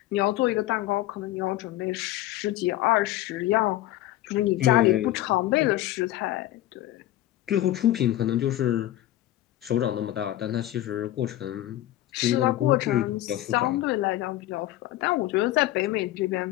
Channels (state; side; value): quieter; right; 14.8 dB